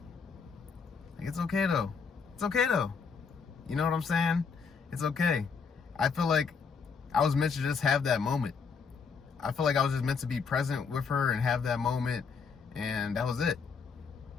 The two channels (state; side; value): quieter; right; 5.6 dB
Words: Like it's okay though. It's okay though. You know what I'm saying? It's okay. I feel like I was meant to just have that moment. I feel like I was just meant to be present with her and have that moment, and that was it.